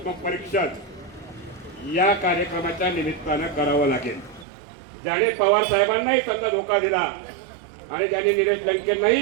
या कार्यक्रमाच्या निमित्तानं करावं लागेल। ज्याने पवार साहेबांनाही समजा धोका दिला आणि ज्याने निलेश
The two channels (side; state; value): left; drops out; at 4.5 s